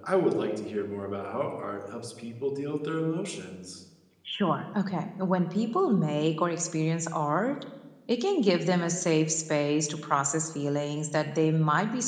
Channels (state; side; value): identical; both; correlation 1.00